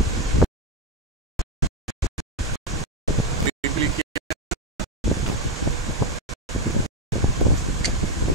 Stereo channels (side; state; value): both; normal; correlation 0.06